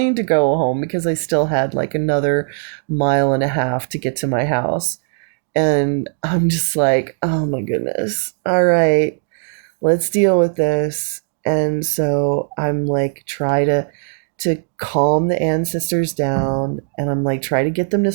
to go home because I still had like another 1.5 miles to get to my house. And I'm just like, "Oh my goodness. All right, let's deal with this." And so I'm like, try to calm the ancestors down, and I'm like, try to get them to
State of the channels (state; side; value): silent; left; digital silence